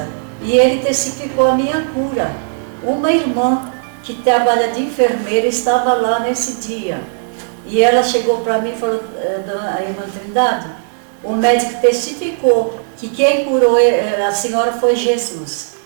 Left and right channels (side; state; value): left; silent; digital silence